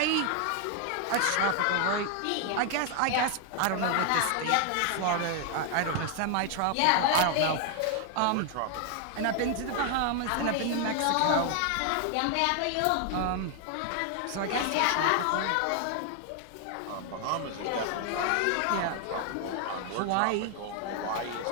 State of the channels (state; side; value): different; both; correlation 0.00